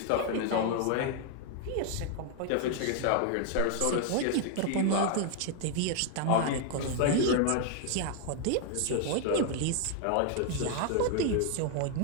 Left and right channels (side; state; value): both; different; correlation 0.00